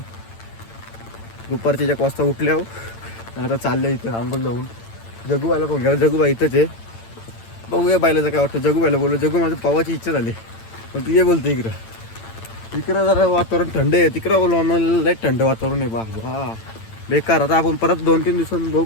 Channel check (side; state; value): right; late; 8.9 ms